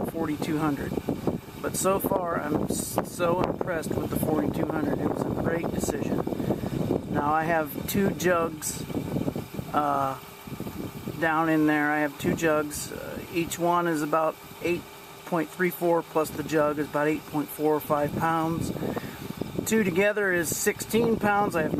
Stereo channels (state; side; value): identical; both; correlation 1.00